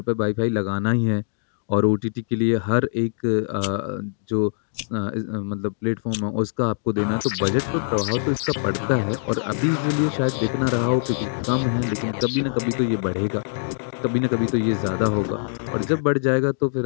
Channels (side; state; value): right; silent; digital silence